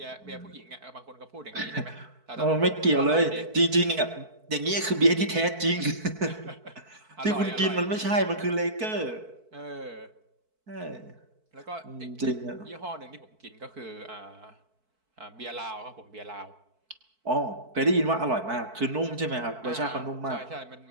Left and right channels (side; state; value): left; late; 4.5 ms